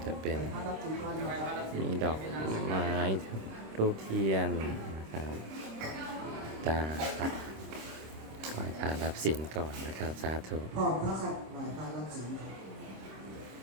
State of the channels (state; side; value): late; left; 26 ms